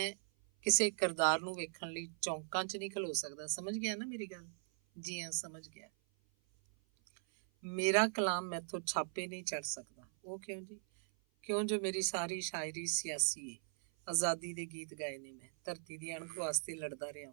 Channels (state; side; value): silent; left; 51 dB below the other